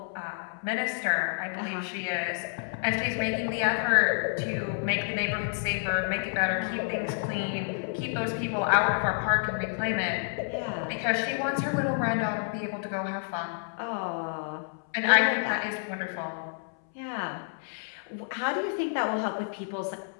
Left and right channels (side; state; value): right; silent; 58 dB below the other